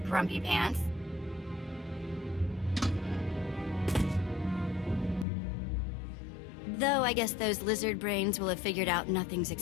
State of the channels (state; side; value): drops out; right; at 5.2 s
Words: Grumpy Pants. Though I guess those lizard brains will have figured out nothing's